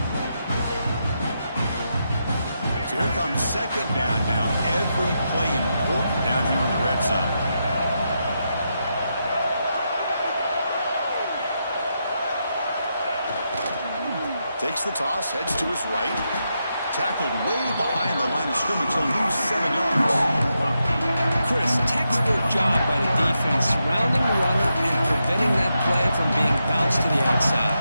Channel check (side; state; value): both; inverted; correlation -0.85